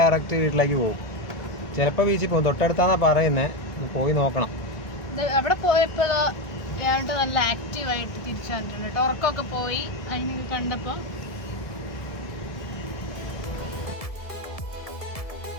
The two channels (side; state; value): right; late; 1.7 ms